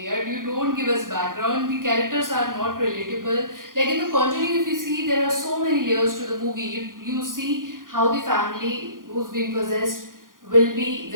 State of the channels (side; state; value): left; late; 0.90 ms